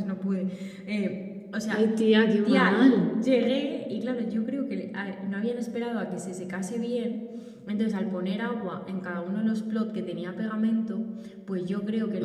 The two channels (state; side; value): identical; both; correlation 1.00